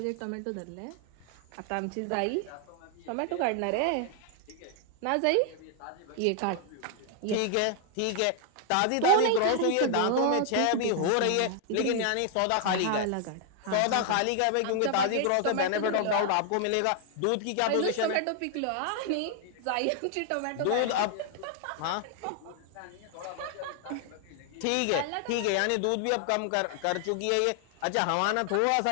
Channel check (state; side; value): different; both; correlation 0.00